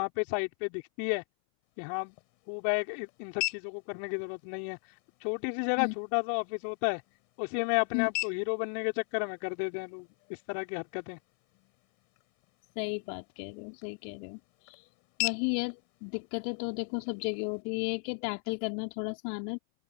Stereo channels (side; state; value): right; silent; 55 dB below the other